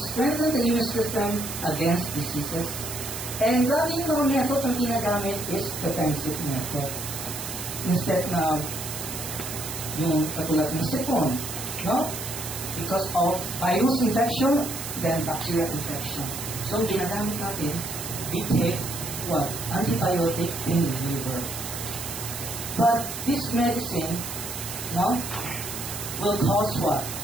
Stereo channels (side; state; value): right; noise; hiss, 7 dB below the sound